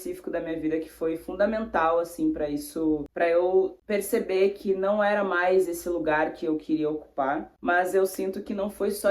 da minha vida que foi fundamental, assim, para eu perceber que não era mais esse lugar que eu queria ocupar. Mas eu sinto que não foi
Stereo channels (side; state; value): both; identical; correlation 1.00